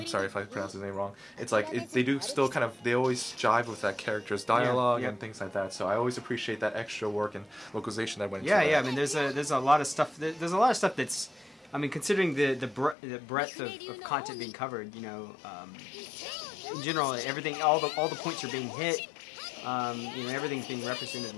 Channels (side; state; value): right; drops out; at 13.0 s